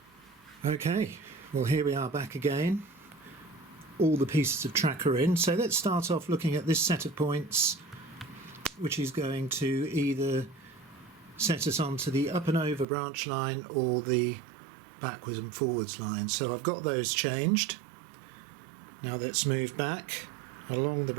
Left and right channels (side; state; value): left; drops out; at 12.9 s